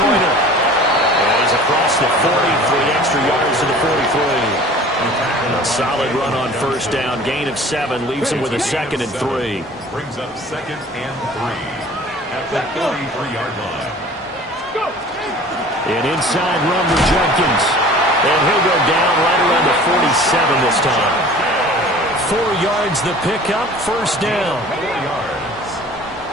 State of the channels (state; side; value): normal; both; correlation 0.45